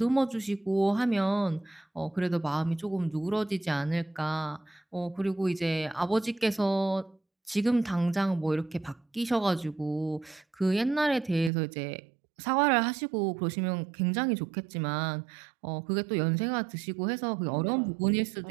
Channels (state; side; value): drops out; left; at 11.5 s